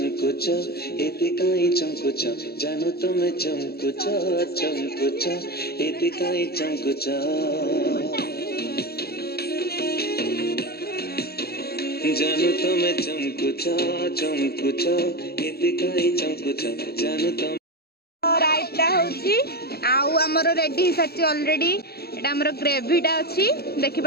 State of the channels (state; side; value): late; right; 0.46 ms